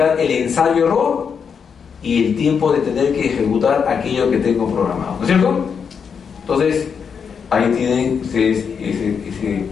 el ensayo-error y el tiempo de tener que ejecutar aquello que tengo programado. ¿No es cierto? Entonces, ahí tienen ustedes ese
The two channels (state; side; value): quieter; right; 6.5 dB